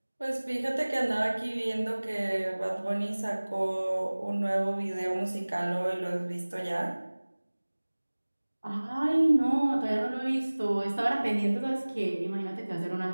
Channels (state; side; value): inverted; both; correlation -1.00